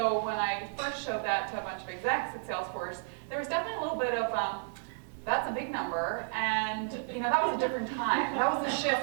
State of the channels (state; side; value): silent; left; digital silence